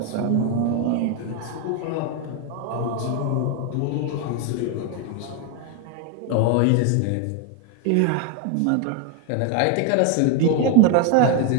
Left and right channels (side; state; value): both; different; correlation 0.01